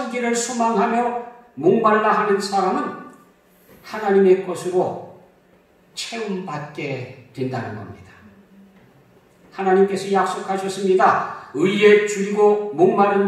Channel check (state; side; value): identical; both; correlation 1.00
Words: 소망하며 목말라 하는 사람은 하나님의 것으로 채움받게 된다는 겁니다. 하나님께서 약속하셨습니다. 의에 줄이고 목마른